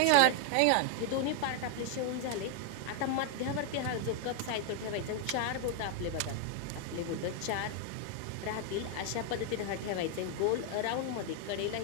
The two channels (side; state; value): both; different; correlation 0.00